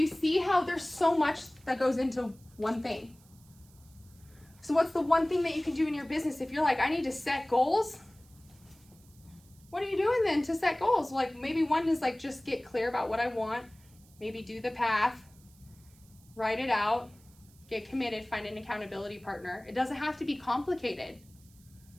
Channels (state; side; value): noise; right; hiss, 28 dB below the sound